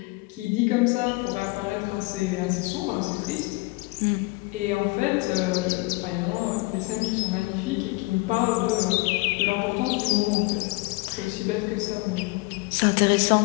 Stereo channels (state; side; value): quieter; right; 24.9 dB